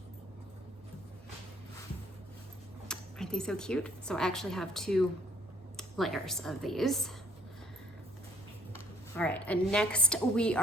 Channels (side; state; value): both; normal; correlation 0.61